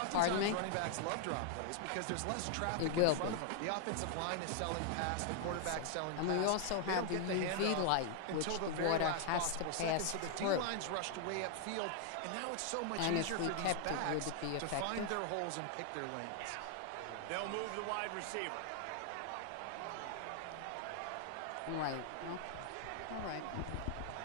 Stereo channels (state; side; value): different; both; correlation 0.00